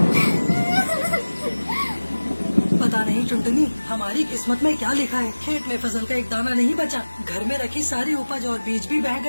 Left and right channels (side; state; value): both; inverted; correlation -1.00